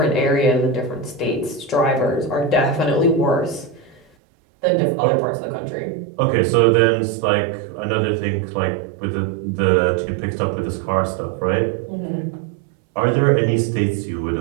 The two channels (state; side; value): drops out; left; at 4.0 s